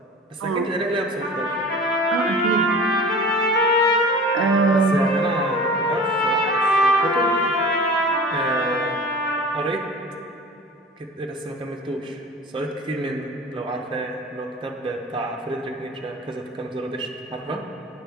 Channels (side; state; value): both; normal; correlation 0.38